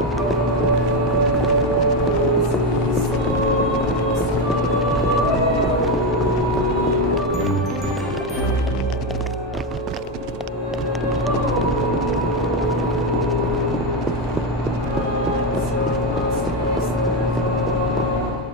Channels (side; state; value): both; normal; correlation 0.11